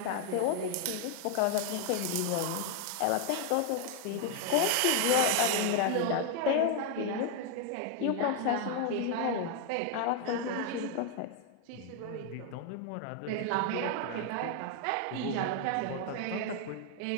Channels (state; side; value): different; both; correlation 0.00